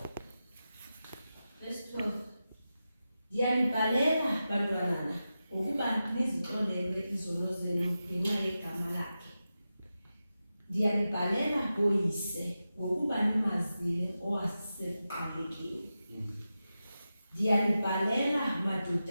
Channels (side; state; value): both; inverted; correlation -0.92